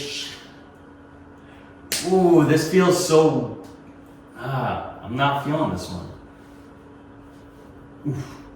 Ooh, this feels so, I'm not feeling this one. Ooh,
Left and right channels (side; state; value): both; identical; correlation 1.00